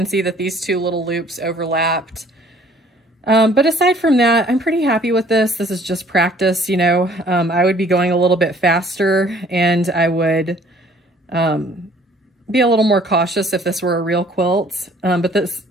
see that these two little loops overlapped. But aside from that, I'm pretty happy with this. This is just practice, you know. I would be going a little bit faster, and I would be a little more cautious if this were a real quilt. But this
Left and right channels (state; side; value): normal; both; correlation 0.57